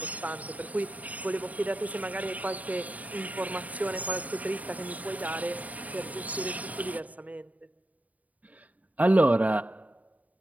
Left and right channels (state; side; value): late; left; 0.073 ms